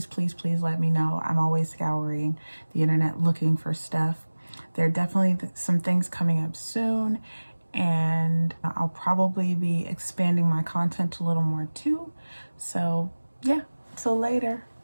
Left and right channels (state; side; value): inverted; both; correlation -1.00